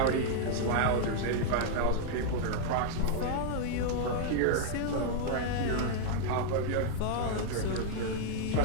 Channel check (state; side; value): different; both; correlation -0.01